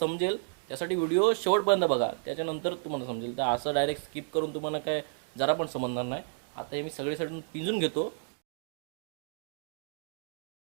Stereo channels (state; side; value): silent; left; 57 dB below the other